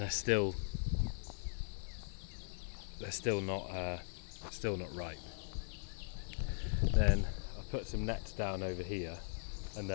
still not ripe. Then I put some nets down over here, and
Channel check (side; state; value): right; silent; digital silence